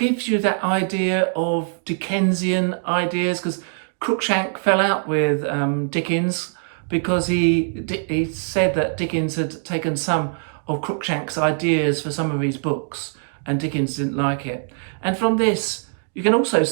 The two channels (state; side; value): silent; left; 64 dB below the other